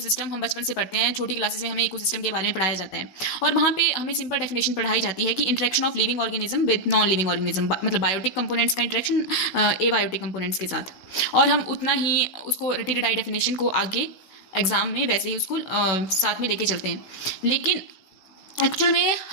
हम बचपन से पढ़ते हैं, छोटी क्लासेस में हमें इकोसिस्टम के बारे में पढ़ाया जाता है और वहाँ पे हमें सिंपल डेफिनेशन पढ़ाई जाती है कि interaction of living organism with non living organism, मतलब बायोटिक कंपोनेंट्स का इंटरेक्शन एबायोटिक कंपोनेंट्स के साथ। और हम उतना ही उसको रटी रटाई डेफिनेशन को आगे एग्जाम में वैसे ही उसको साथ में लेके चलते हैं। लेकिन एक्चुअल में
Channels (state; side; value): late; right; 16 ms